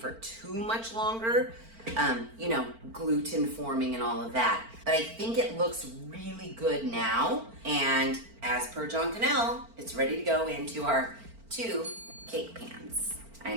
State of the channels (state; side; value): late; left; 4.4 ms